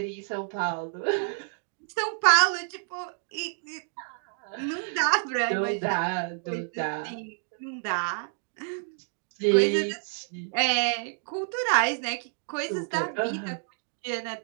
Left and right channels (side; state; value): left; silent; 59 dB below the other